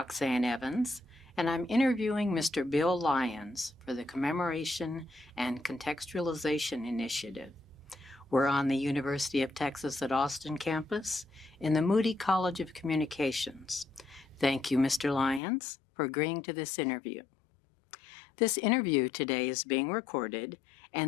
Evans, and I'm interviewing Mr. Bill Lyons for the Commemoration and Contextualization Initiative. We're on the University of Texas at Austin campus in the Moody College of Communications. Thank you, Mr. Lyons, for agreeing to this interview. This interview today is being recorded,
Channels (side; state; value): right; drops out; at 15.4 s